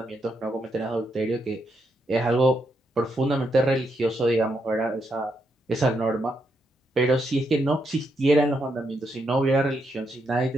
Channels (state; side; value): normal; both; correlation 0.80